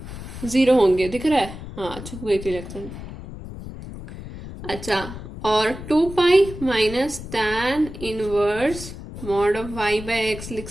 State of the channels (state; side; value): noise; left; rumble, 11 dB below the sound